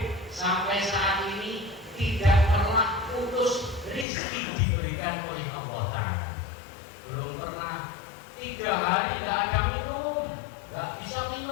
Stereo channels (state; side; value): drops out; right; at 4.0 s